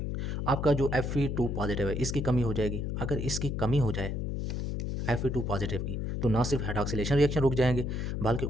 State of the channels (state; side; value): noise; left; hum, 2 dB below the sound